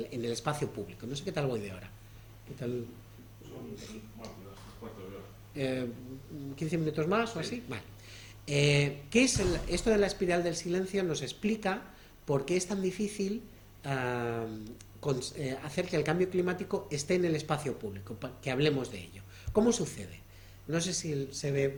espacio público. No sé qué tal voy de ahora. ¿Qué tal? 15 minutos más o así. Vale. ¿Qué es esto de la espiral del silencio? Nos explica por qué es tan difícil hacer que el cambio climático esté en el espacio público, que hablemos de ello. ¿Cómo sucede? No sé si se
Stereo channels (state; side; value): identical; both; correlation 1.00